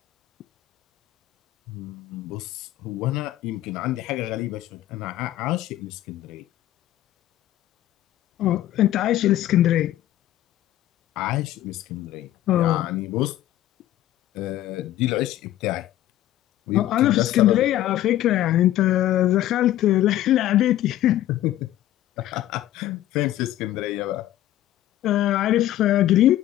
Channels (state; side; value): quieter; right; 13.6 dB